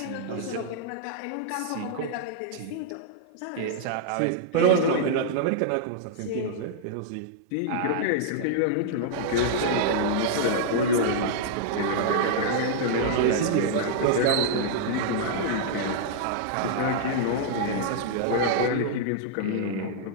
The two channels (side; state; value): both; different; correlation -0.02